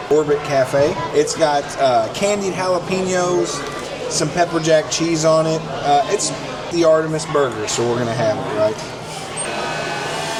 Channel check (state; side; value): identical; both; correlation 1.00